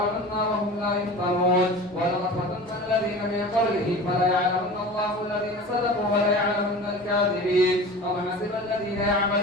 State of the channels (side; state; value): both; normal; correlation 0.37